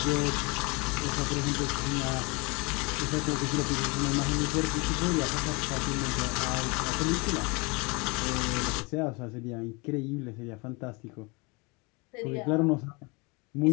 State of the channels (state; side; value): quieter; right; 28.7 dB